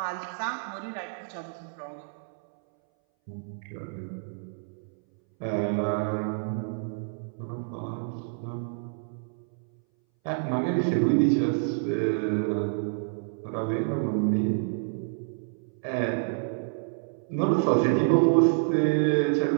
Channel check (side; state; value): left; silent; 59 dB below the other